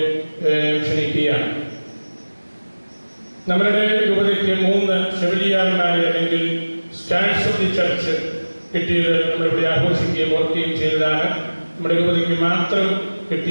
ക്ഷണിക്കുകയാണ്. നമ്മളുടെ രൂപതയ്ക്ക് 3 ഷെവലിയാർമാരെ അല്ലെങ്കിൽ സ്റ്റാൻഡ്സ് ഓഫ് ദി ചർച്ച് കിട്ടിയത് നമ്മളിവിടെ ആഘോഷിക്കുകയും ഓർക്കുകയും ചെയ്തതാണ്. നമ്മുടെ രൂപതയ്ക്ക് മാത്രം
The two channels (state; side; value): inverted; both; correlation -1.00